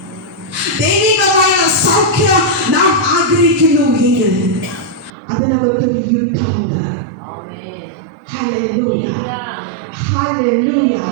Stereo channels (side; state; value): left; drops out; at 5.1 s